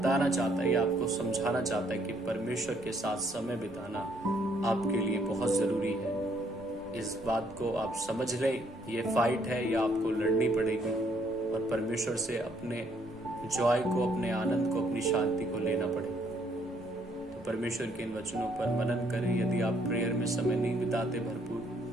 चाहता है, आपको समझाना चाहता है कि परमेश्वर के साथ समय बिताना आपके लिए बहुत जरूरी है। इस बात को आप समझ लें, ये फाइट है, ये आपको लड़नी पड़ेगी और परमेश्वर से अपने जॉय को, अपने आनंद को, अपनी शांति को लेना पड़ेगा। तो परमेश्वर के इन वचनों पर मनन करें। यदि आप प्रेयर में समय नहीं बिताते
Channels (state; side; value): normal; both; correlation 0.68